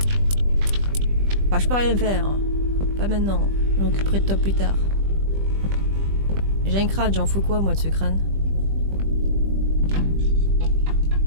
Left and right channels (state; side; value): late; left; 20 ms